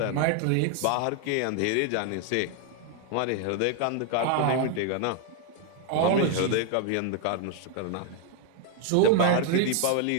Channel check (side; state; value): both; different; correlation 0.01